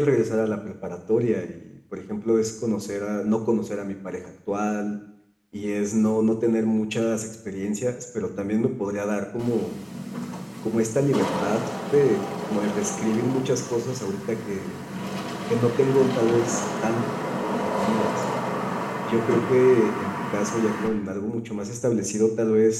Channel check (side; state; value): both; identical; correlation 1.00